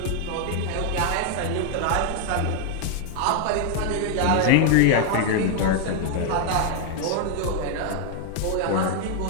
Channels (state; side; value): different; both; correlation 0.00